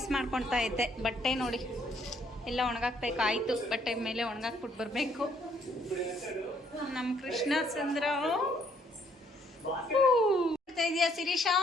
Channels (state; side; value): normal; both; correlation 0.67